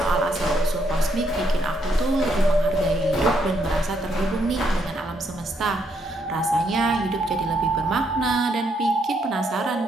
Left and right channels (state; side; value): normal; both; correlation 0.74